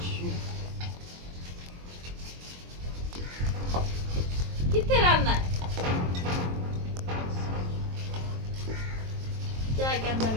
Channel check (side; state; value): left; late; 23 ms